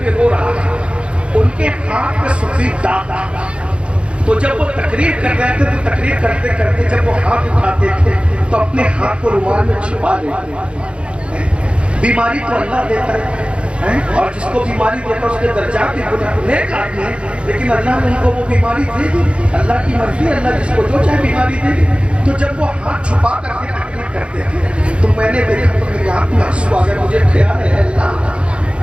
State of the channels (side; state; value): left; late; 0.058 ms